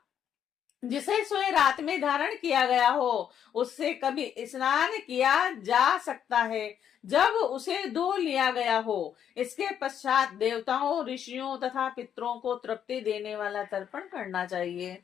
जिसे सोए रात में धारण किया गया हो उससे कभी स्नान किया जा सकता है जब उसे धो लिया गया हो। इसके पश्चात देवताओं, ऋषियों तथा पितरों को तृप्ति देने वाला तर्पण करना चाहिए।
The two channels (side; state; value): right; quieter; 9.1 dB